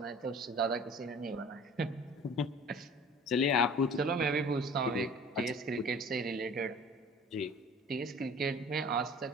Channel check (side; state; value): both; normal; correlation 0.46